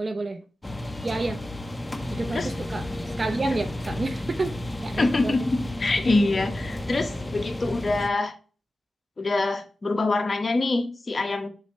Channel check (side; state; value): both; normal; correlation 0.94